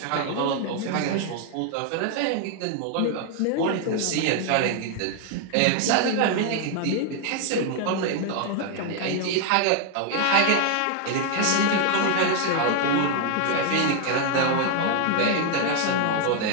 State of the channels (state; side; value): different; both; correlation 0.00